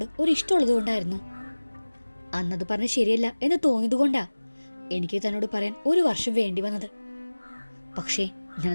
ഒരു ഇഷ്ടമുള്ളത് കൊണ്ടായിരുന്നു. അന്നത് പറഞ്ഞ ശരിയല്ല എന്ന് തോന്നിയത് കൊണ്ടാ എനിക്ക് തന്നോട് പറയാൻ 1 വർഷം വേണ്ടി വന്നത്. പക്ഷേ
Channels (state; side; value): inverted; both; correlation -1.00